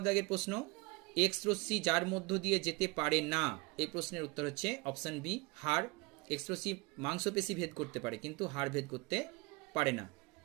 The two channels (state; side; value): quieter; left; 26.5 dB